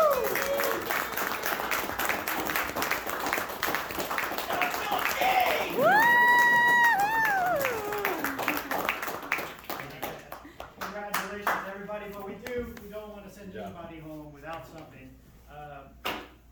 Congratulations, everybody, but we don't want to send anybody home without something.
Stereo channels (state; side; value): identical; both; correlation 1.00